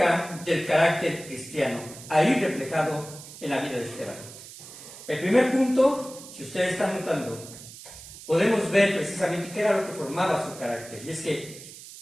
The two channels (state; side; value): noise; right; hiss, 16 dB below the sound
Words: del carácter cristiano, ahí reflejado en la vida de Esteban. El primer punto, si ustedes están notando, podemos ver precisamente qué era lo que formaba su carácter, y es que